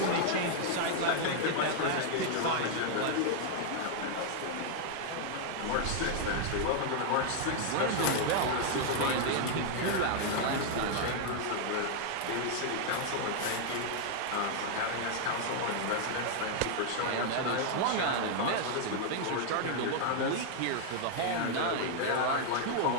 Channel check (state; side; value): different; both; correlation 0.00